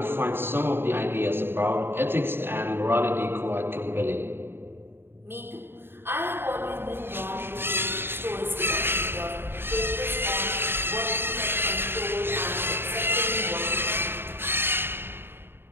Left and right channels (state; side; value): late; left; 0.11 ms